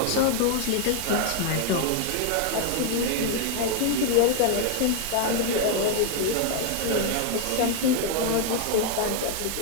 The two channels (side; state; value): both; different; correlation 0.00